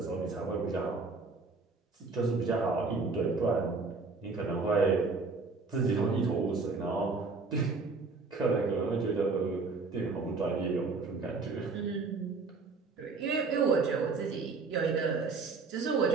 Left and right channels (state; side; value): quieter; left; 4.2 dB